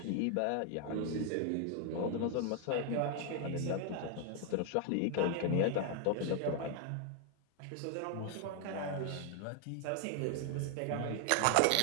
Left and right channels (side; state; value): both; different; correlation 0.00